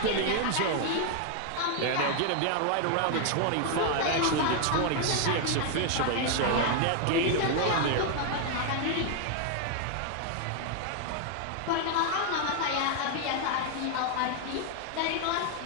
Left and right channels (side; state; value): both; different; correlation 0.00